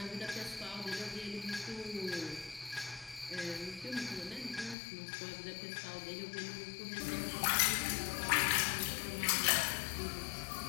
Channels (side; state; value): right; drops out; at 4.8 s